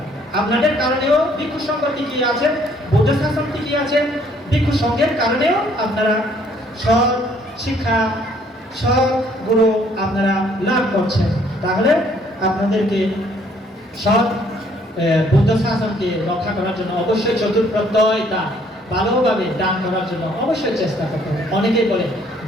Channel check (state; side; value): normal; both; correlation 0.63